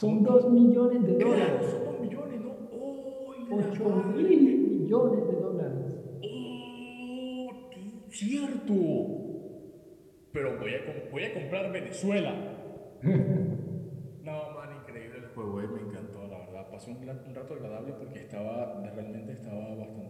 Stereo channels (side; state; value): both; identical; correlation 1.00